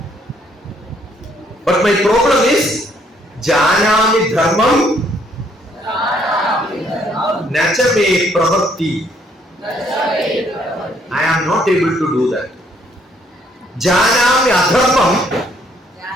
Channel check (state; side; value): normal; both; correlation 0.67